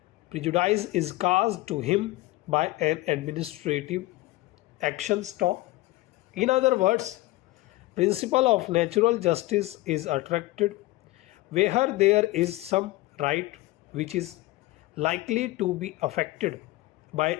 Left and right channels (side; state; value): right; quieter; 18.6 dB